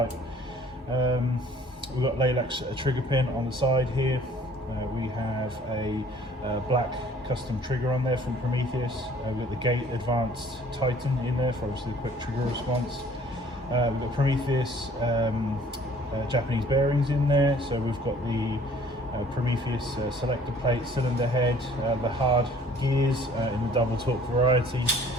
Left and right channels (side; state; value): both; normal; correlation 0.54